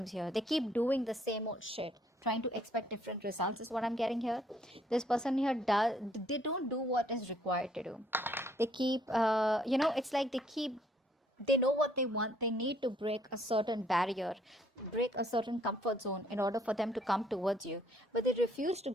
here. They keep doing the same old shit, trying to expect different results is what I'm getting here. This person here they don't do what is required to do. They keep, it's like they know what they want. They need to break a certain barrier, break a certain comfort zone in order for them to come towards you. But they refuse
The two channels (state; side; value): normal; both; correlation 0.65